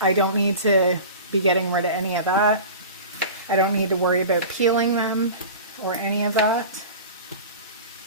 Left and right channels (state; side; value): inverted; both; correlation -0.36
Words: I don't need to be getting rid of any of that. I don't need to worry about peeling them or any of that,